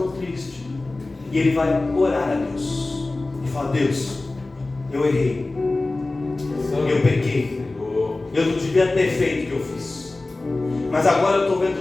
triste. E ele vai orar a Deus e fala: Deus, eu errei, eu pequei, eu não devia ter feito o que eu fiz, mas agora eu estou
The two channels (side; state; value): right; quieter; 3.1 dB